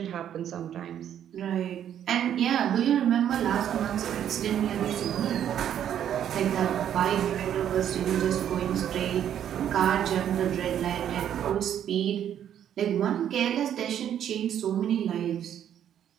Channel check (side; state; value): left; quieter; 10.0 dB